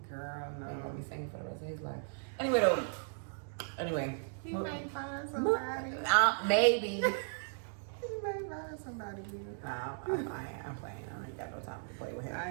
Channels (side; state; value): left; silent; digital silence